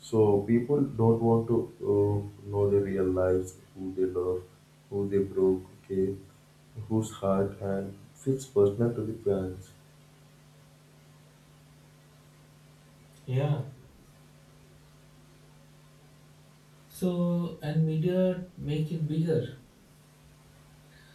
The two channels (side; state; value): both; identical; correlation 1.00